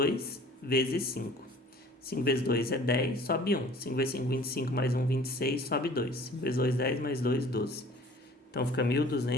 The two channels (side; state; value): both; normal; correlation 0.49